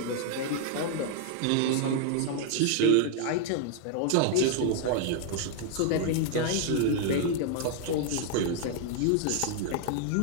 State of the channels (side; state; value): both; different; correlation 0.00